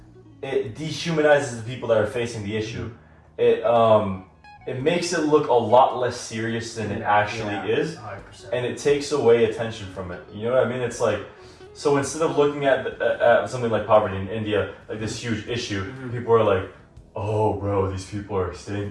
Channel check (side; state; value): both; identical; correlation 1.00